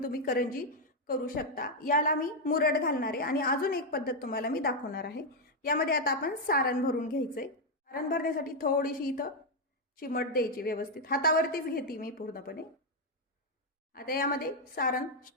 तुम्ही करंजी करू शकता. याला मी मुरड घालणार आहे आणि अजून एक पद्धत तुम्हाला मी दाखवणार आहे. यामध्ये आता आपण सारण भरून घ्यायचंय. सारण भरण्यासाठी थोडीशी इथं चिमट द्यायची व्यवस्थित. हातावरतीच घेते मी पूर्णपणे. आता यामध्ये सारण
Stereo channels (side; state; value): both; normal; correlation 0.01